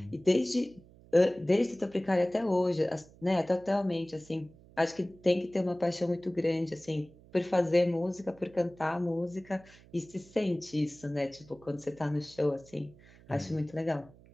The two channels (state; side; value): noise; right; hum, 24 dB below the sound